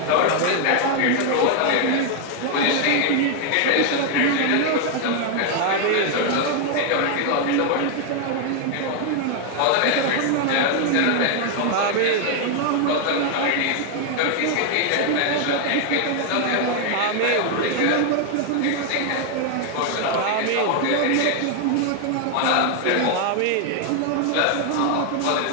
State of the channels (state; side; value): different; both; correlation 0.00